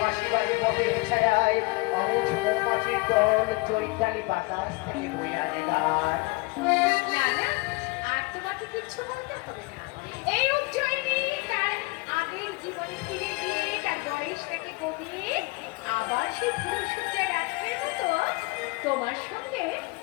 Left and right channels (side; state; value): right; quieter; 26.1 dB